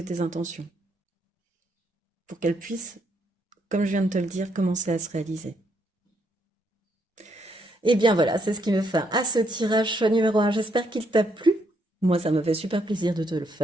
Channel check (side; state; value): both; normal; correlation 0.74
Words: tes intentions. Pour qu'elle puisse, comme je viens de te le dire, commencer à se réaliser. Et bien voilà, c'est ce qui me fait à ce tirage choix numéro un. J'espère qu'il t'a plu. Moi, ça me fait super plaisir de te le